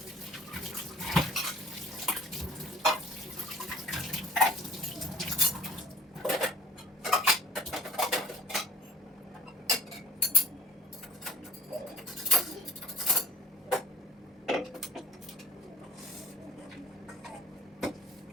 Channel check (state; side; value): normal; both; correlation 0.48